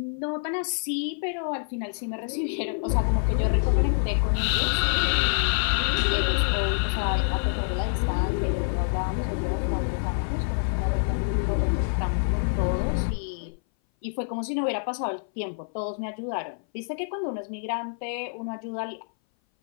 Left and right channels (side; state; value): right; silent; 58 dB below the other